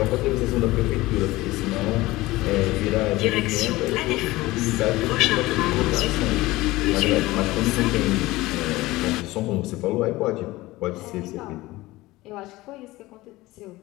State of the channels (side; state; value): right; quieter; 19.1 dB